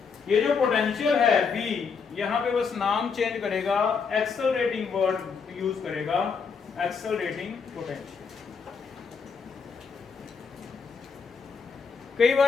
ये जो पोटेंशियल है V, यहाँ पे बस नाम चेंज करेगा, एक्सेलरेटिंग वर्ड यूज करेगा, एक्सेलरेटिंग पोटेंशियल। कई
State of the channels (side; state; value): right; quieter; 5.6 dB